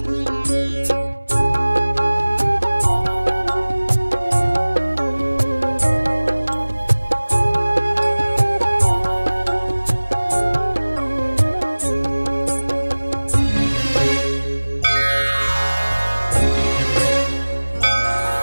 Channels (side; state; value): both; inverted; correlation -1.00